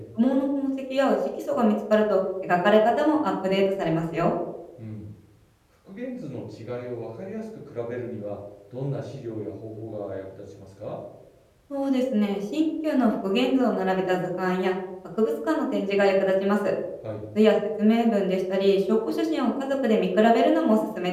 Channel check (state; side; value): identical; both; correlation 1.00